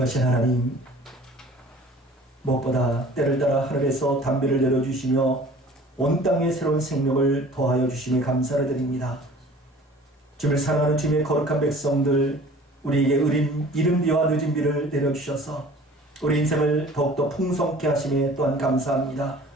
하나님, 무엇보다 때를 따라 하늘에서 담비를 내려주시며 온 땅에 새로운 생명을 더하여 주심에 감사를 드립니다. 주님을 사랑하는 주님의 거룩한 백성들, 우리에게 의린 이른 비와 늦은 비를 내려주셔서 우리 인생을 더욱더 풍성케 하심에 또한 감사합니다.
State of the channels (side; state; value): both; normal; correlation 0.47